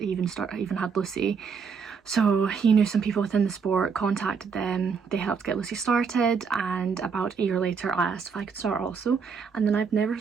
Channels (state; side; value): quieter; left; 5.9 dB